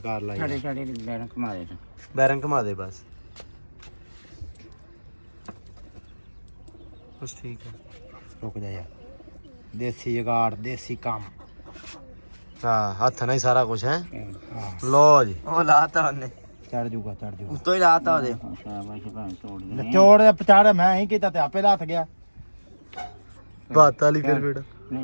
ਲੈ ਯਾਰ। ਛੜੇ ਬੈਰੰਗ ਘੁਮਾ ਦੇ। ਬੈਰੰਗ ਘੁਮਾ ਦੇ ਬਸ ਠੀਕ ਹੈ। ਰੁਕ ਜਾ ਯਾਰ, ਦੇਸੀ ਜਗਾੜ ਦੇਸੀ ਕੰਮ। ਹਾਂ ਹੱਥ ਨਾਲ ਹੀ ਸਾਰਾ ਕੁਝ ਹੈ। ਲੋ ਜੀ ਉਹ ਲਾਤਾ ਉਹਨੇ, ਚੜ ਜੂਗਾ ਉੱਤੋਂ ਹੀ ਲਾਤਾ ਉਹਦੇ। ਸ਼ਾਬਾਸ਼ ਭਾਂ ਤੋੜ ਦੇ। ਚੋੜ ਦੇ ਪਚਾੜ ਮੈਂ ਹੀ ਕੀਤਾ ਤੇ ਆਪੇ ਲੱਥ ਗਿਆ। ਬਾਤ ਵਾਲੀ ਫਿਰ ਬੇੜਾ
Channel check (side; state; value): both; inverted; correlation -1.00